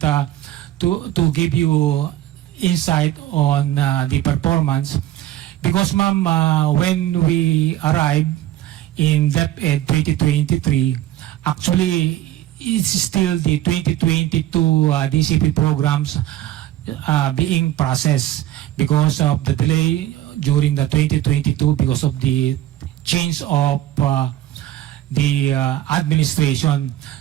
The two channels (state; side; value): quieter; left; 13.6 dB